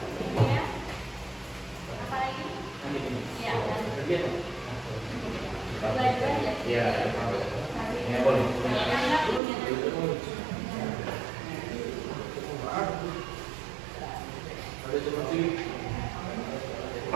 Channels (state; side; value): drops out; left; at 9.4 s